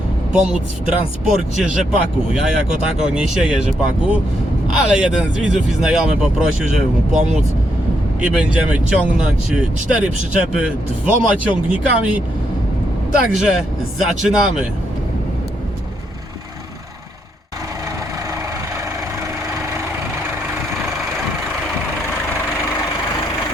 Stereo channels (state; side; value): normal; both; correlation 0.78